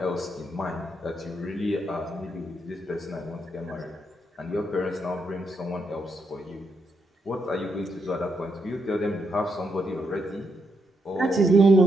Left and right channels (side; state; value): both; normal; correlation 0.79